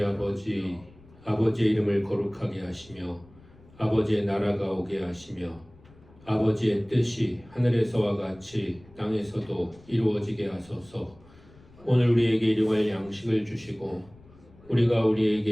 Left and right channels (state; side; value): noise; left; rumble, 25 dB below the sound